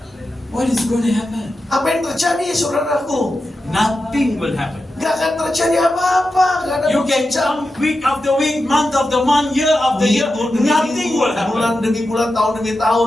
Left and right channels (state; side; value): normal; both; correlation 0.90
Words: What is going to happen? Apa yang terjadi, saudaraku? Nothing will happen. Gak akan terjadi apa-apa. Gak ada You can come week after week, month after month, year after year, minggu demi nothing will minggu, bulan happen. demi bulan, tahun demi